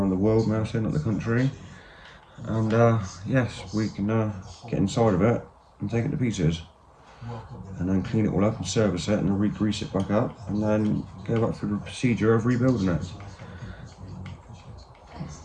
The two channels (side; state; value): both; identical; correlation 1.00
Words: the world now, saying not the country. And yes, we can get inside of it and take it to pieces, and then clean it all up and service it and re-grease it back up, and then go back through the procedure of rebuilding it.